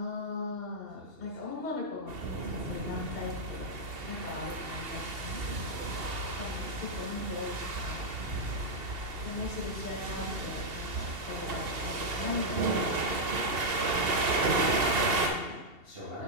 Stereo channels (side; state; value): left; late; 2.7 ms